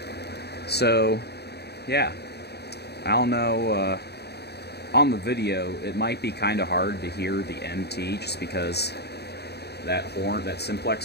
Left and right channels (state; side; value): late; right; 0.48 ms